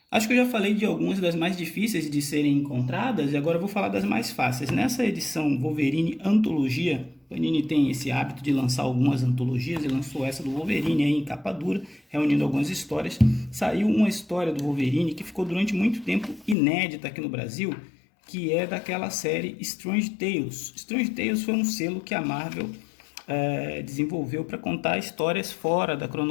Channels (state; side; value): drops out; right; at 16.6 s